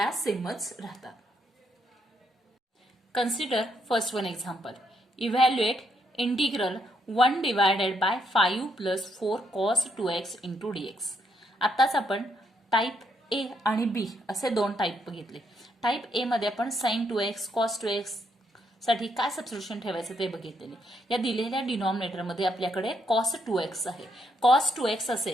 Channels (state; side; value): normal; both; correlation 0.75